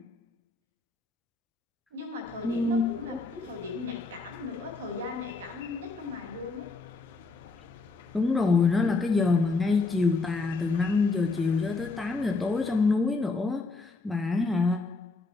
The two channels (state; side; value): quieter; right; 3.8 dB